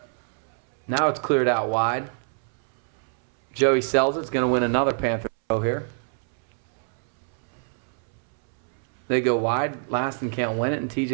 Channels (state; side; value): silent; left; 62 dB below the other